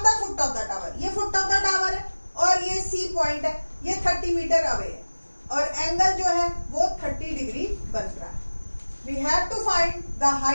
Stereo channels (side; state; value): both; inverted; correlation -1.00